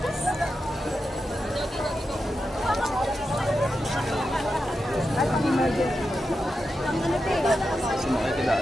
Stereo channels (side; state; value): both; normal; correlation 0.89